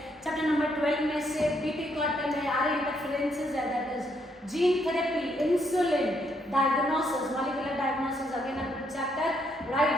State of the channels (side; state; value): both; normal; correlation 0.73